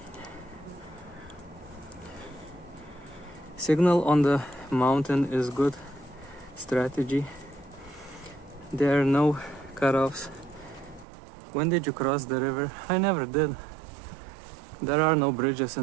Signal on the mountain is good strategy. There are no cutoffs. When did you cross the river? I never did. There are no bridges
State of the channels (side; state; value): left; drops out; at 11.1 s